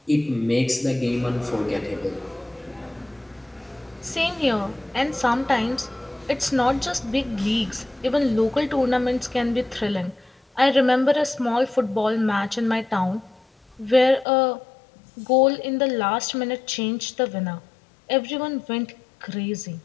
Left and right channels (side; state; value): right; drops out; at 14.2 s